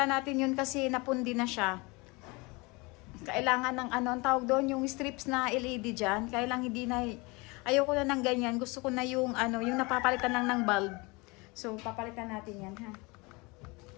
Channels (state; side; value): quieter; right; 26.3 dB